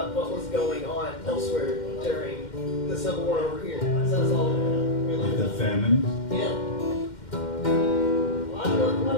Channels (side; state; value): right; late; 2.1 ms